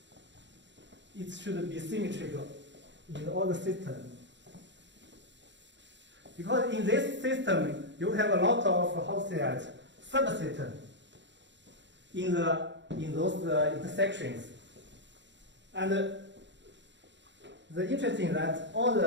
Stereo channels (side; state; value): left; late; 0.53 ms